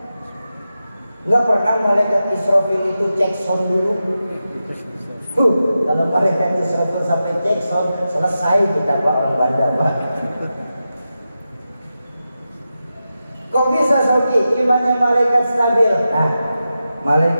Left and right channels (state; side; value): inverted; both; correlation -0.91